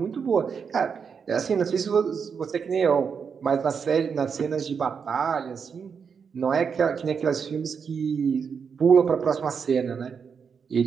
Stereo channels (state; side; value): quieter; left; 6.3 dB